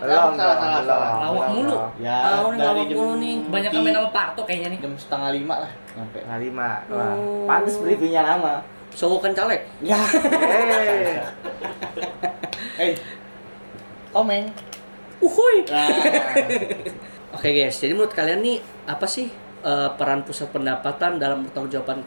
Salah. Lawak mulu. Ya, Nih dari lawak jam mulu nih. Kebanyakan main sama Parto kayaknya nih. jam 4:30 lah nyampe. Setengah 5. Wah, Oh. pantes briefingnya lama. Sogokan caleg. Ya. Eh, Komeng. Uhuy. Nah, Oke guys, jadi menurut kalian nih apa sih peran pusat pendapatan dalam pertanggungjawaban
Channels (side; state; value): both; inverted; correlation -1.00